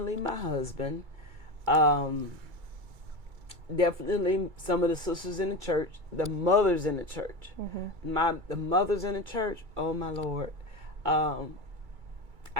my husband, definitely some of the sisters in the church, the mothers in the church. The mothers in the church, oh my Lord. I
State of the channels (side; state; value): left; late; 2.3 ms